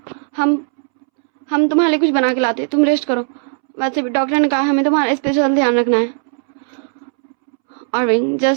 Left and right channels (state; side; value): silent; left; 68 dB below the other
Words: हम तुम्हारे लिए कुछ बना के लाते, तुम रेस्ट करो। वैसे भी डॉक्टर ने कहा हमें तुम्हारा स्पेशल ध्यान रखना है। और विंग